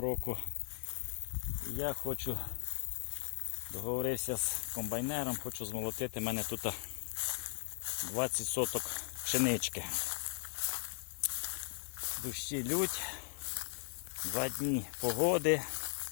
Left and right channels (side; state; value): right; silent; 53 dB below the other